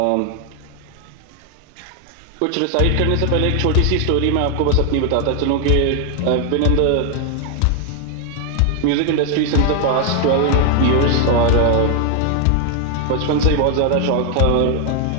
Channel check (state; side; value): different; both; correlation 0.00